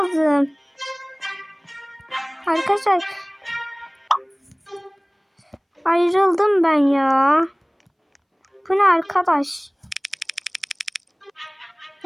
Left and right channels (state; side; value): identical; both; correlation 1.00